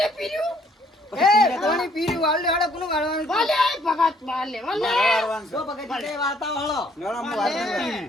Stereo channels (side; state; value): both; normal; correlation 0.64